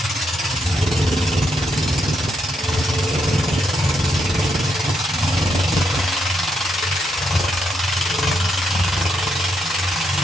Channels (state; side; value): normal; both; correlation 0.79